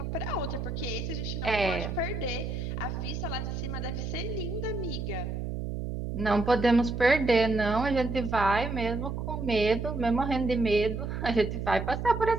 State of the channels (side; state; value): right; noise; hum, 4 dB below the sound